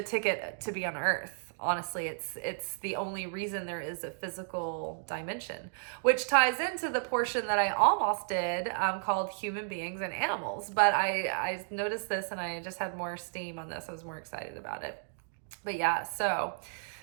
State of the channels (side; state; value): left; silent; digital silence